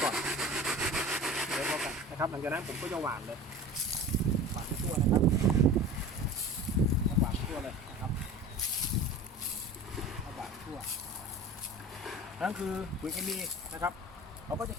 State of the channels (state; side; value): normal; both; correlation 0.37